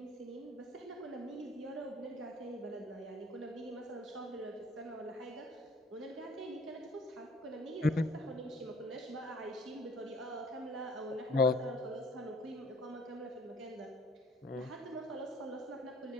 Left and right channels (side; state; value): both; normal; correlation 0.56